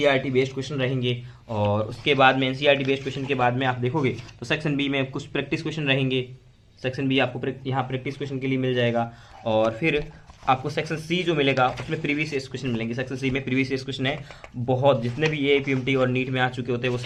बेस्ड क्वेश्चन रहेंगे, और उसके बाद में एनसीईआरटी बेस्ड क्वेश्चन के बाद में आप देखोगे तो सेक्शन बी में कुछ प्रैक्टिस क्वेश्चन रहेंगे, सेक्शन बी आपको यहाँ प्रैक्टिस क्वेश्चन के लिए मिल जाएगा। और फिर आपको सेक्शन सी जो मिलेगा उसमें प्रीवियस ईयर क्वेश्चन मिलेंगे। सेक्शन सी में प्रीवियस ईयर क्वेश्चन है बहुत, जितने भी ये पीएमटी और नीट में आ चुके होते हैं वो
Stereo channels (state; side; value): identical; both; correlation 1.00